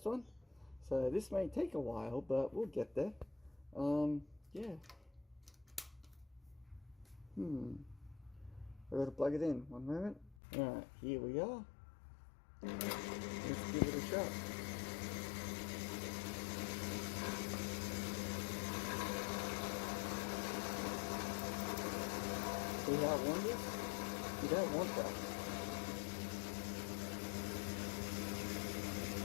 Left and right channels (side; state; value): right; drops out; at 10.4 s